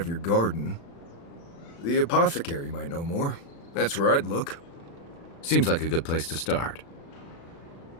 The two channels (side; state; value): right; late; 36 ms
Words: your garden. The apothecary might know more. That's where I'd look. Seems like a good place to start.